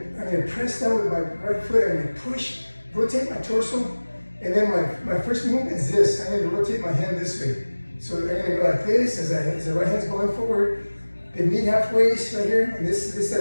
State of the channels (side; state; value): both; inverted; correlation -1.00